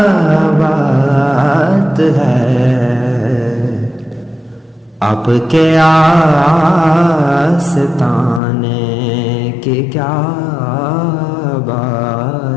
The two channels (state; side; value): drops out; right; at 8.4 s